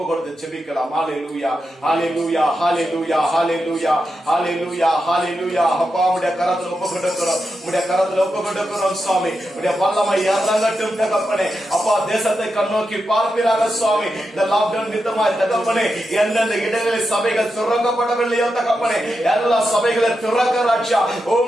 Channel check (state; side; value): normal; both; correlation 0.88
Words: கொடுத்து செபிக்கலாம். ஹல்லேலூயா, ஹல்லேலூயா, ஹல்லேலூயா, ஹல்லேலூயா, ஹல்லேலூயா, ஹல்லேலூயா. அப்பா உம்முடைய கரத்தில் ஒப்பு கொடுக்கிறோம். உம்முடைய கரத்தில் ஒப்பு கொடுக்கிறோம் சுவாமி. உம்முடைய வல்லமை இறங்கட்டும் தகப்பனே. அப்பா தேசத்தை கண்ணோக்கி பார்ப்பீராக சுவாமி. இந்த லாக்டவுன் நிமித்தமாய் தகப்பனே எந்தெந்த இடங்களில் சபைகள் திறக்கப்படவில்லையோ தகப்பனே எல்லா சபைகளை திறக்க ராஜா.